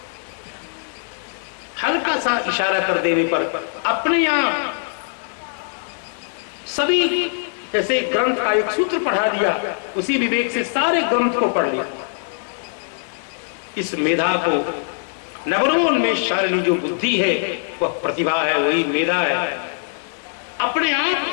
हल्का सा इशारा कर देने पर अपने आप सभी, जैसे ग्रंथ का एक सूत्र पढ़ा दिया उसी विवेक से सारे ग्रंथ को पढ़ लिया। इस मेधा को, नवनवोन्मेष शालिनी जो बुद्धि है वह प्रतिभा है, वही मेधा है। अपने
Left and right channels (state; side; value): silent; right; digital silence